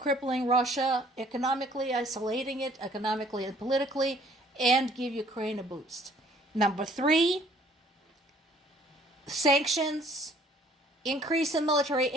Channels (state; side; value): normal; both; correlation 0.58